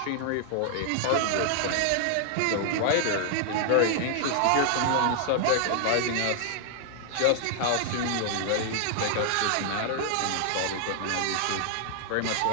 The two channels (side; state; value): both; different; correlation 0.00